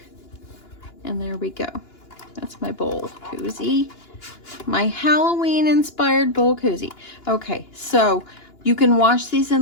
And there we go. That's my bowl koozie. My Halloween inspired bowl koozie. Okay, so you can wash these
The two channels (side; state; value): right; late; 2.9 ms